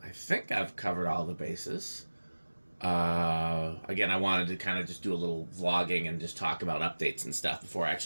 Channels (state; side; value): inverted; both; correlation -1.00